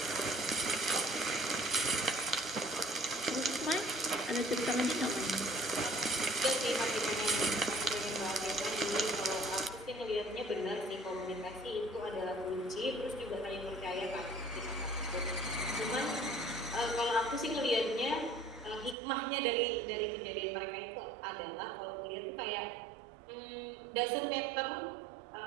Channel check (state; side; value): drops out; left; at 18.9 s